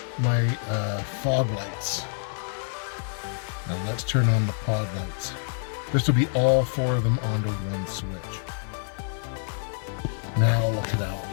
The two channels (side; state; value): right; silent; digital silence